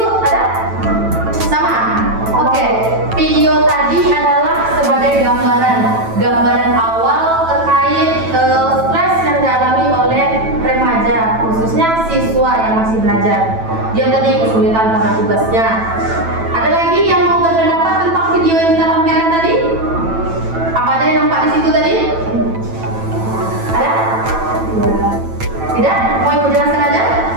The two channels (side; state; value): left; late; 9.0 ms